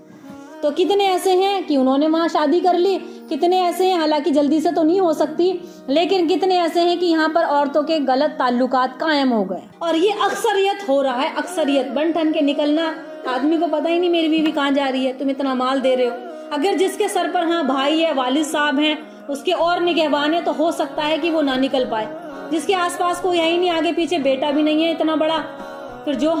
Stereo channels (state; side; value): identical; both; correlation 1.00